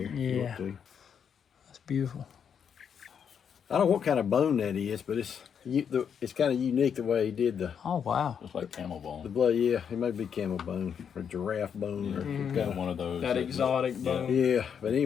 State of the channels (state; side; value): quieter; right; 7.6 dB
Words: if you want Yeah. to. That's beautiful. I don't know what kind of bone that is, but it's kind of unique the way he did the Oh wow. Just like camel bone. blood. Yeah, it may be camel bone or giraffe bone or Got kind of. one of those. That exotic bone. Yeah, but